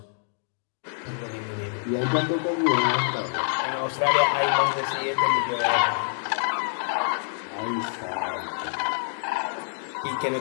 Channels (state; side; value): silent; right; digital silence